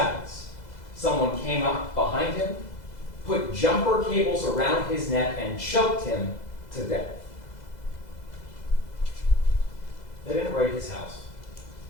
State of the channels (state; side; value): late; right; 2.0 ms